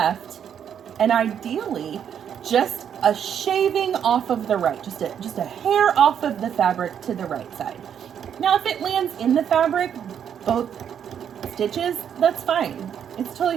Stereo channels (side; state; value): left; quieter; 8.6 dB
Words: and ideally just a shaving off of the right, just a hair off of the fabric to the right side. Now if it lands in the fabric, both stitches, that's fine. It's